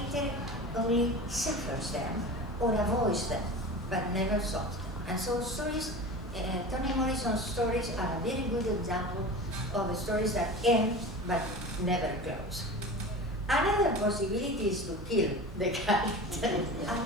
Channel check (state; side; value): normal; both; correlation 0.33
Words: only suffers them or avoids them, but never solves them. And so stories, Toni Morrison's stories are a very good example of stories that end but never close. Another possibility is to kill the character,